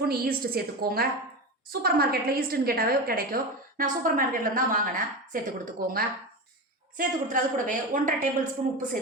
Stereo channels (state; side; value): normal; both; correlation 0.22